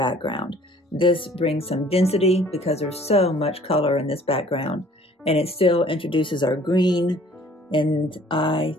This brings some density because there's so much color in this background, and it still introduces our green, and I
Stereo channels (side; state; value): both; normal; correlation 0.54